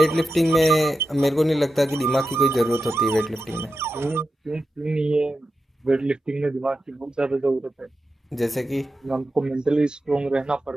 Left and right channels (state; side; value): normal; both; correlation 0.90